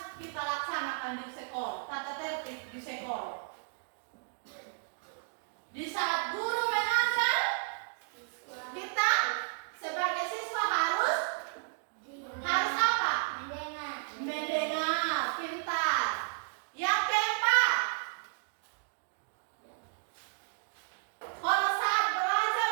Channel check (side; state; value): left; silent; digital silence